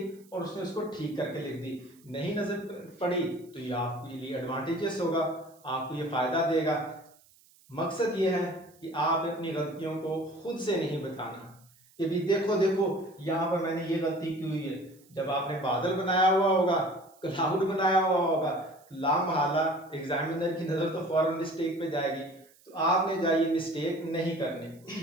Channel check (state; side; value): noise; right; hiss, 29 dB below the sound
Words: और उसने उसको ठीक करके लिख दी। नहीं नजर पड़ी तो ये आपके लिए एडवांटेजेस होगा, आपको ये फायदा देगा। मकसद ये है कि आप अपनी गलतियों को खुद से नहीं बताना कि भी देखो देखो यहाँ पर मैंने ये गलती की हुई है। जब आपने बादल बनाया हुआ होगा, क्लाउड बनाया हुआ होगा, लामहला एग्जामिनर की नजर तो फौरन मिस्टेक पे जाएगी, तो आपने जाइए मिस्टेक नहीं करनी।